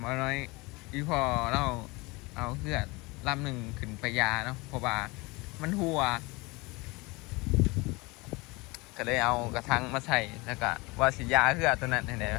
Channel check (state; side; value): quieter; right; 24.9 dB